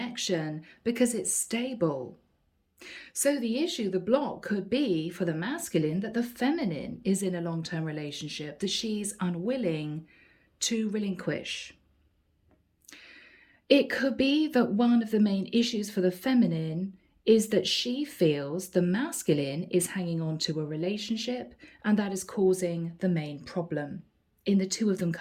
because it's stable. So the issue, the block, could be for the masculine that the feminine is in a long-term relationship that she's unwilling to relinquish. It could be that one of the main issues for the feminine is that she feels the masculine is hanging on to a relationship, and that is causing the main problem in the two of them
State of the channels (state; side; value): identical; both; correlation 1.00